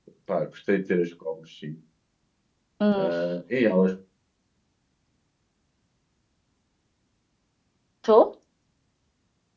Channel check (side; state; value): both; identical; correlation 1.00